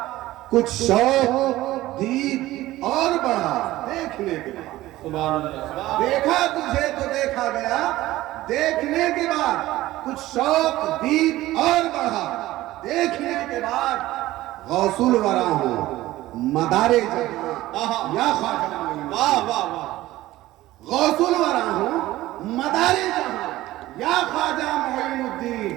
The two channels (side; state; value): left; quieter; 16.4 dB